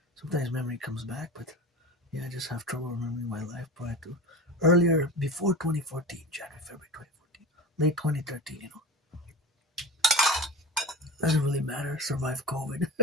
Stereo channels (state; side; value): normal; both; correlation 0.31